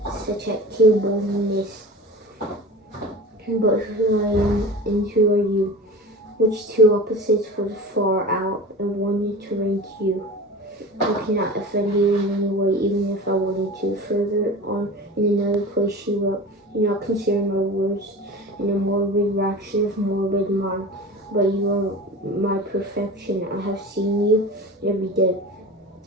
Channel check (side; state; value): both; normal; correlation 0.34